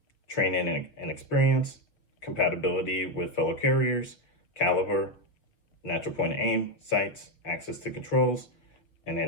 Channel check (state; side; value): late; right; 6.2 ms